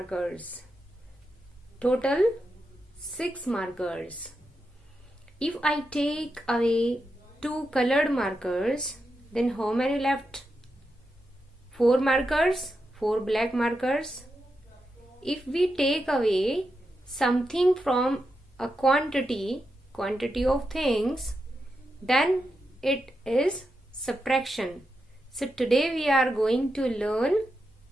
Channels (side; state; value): both; normal; correlation 0.87